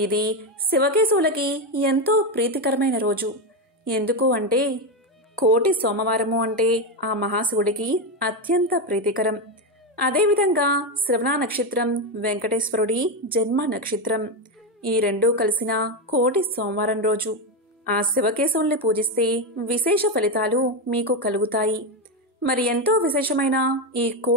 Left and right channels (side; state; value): both; normal; correlation 0.10